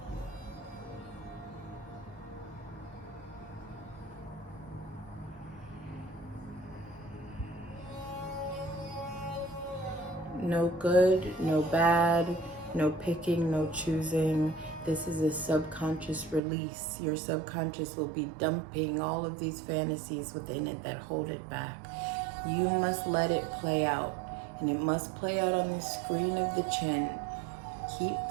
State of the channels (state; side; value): drops out; left; at 16.4 s